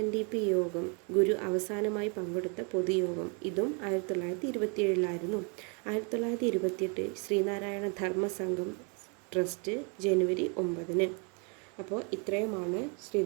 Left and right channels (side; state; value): left; quieter; 35.6 dB